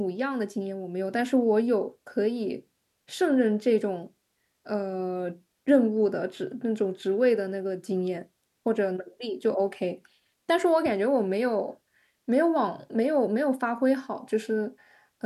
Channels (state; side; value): identical; both; correlation 1.00